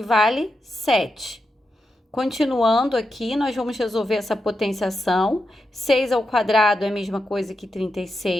vale 7. Continuando aqui, nós vamos resolver essa potenciação. 6 ao quadrado é a mesma coisa que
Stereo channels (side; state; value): both; normal; correlation 0.87